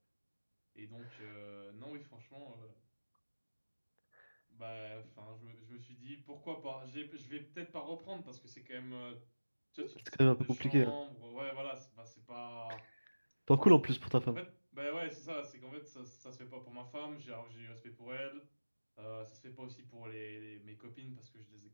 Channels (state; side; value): inverted; both; correlation -1.00